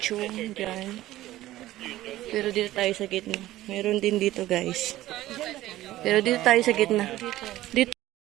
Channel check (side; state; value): left; quieter; 15.3 dB